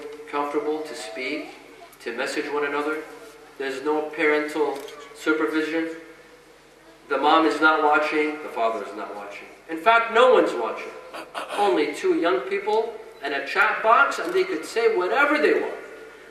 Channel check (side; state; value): both; identical; correlation 1.00